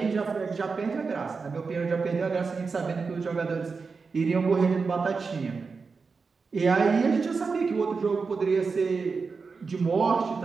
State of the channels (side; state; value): left; quieter; 4.8 dB